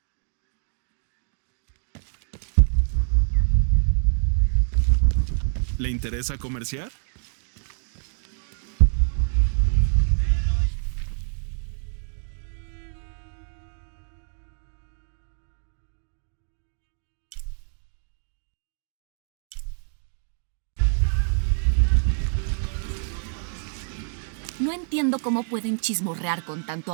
¿Le interesa comerciar? No entiendo cómo pueden chismorrear con tanto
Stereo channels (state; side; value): silent; left; 61 dB below the other